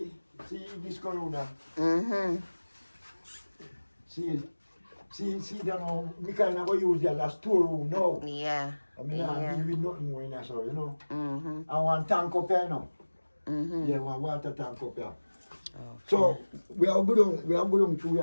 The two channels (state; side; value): inverted; both; correlation -1.00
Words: this corona. See that now, we kind of go use that as storeroom now. Yeah. I mean, I deal with nothing more in there, so you know. Mm-hmm. I want tank up here now. Yeah, one water tank up here. So we are going through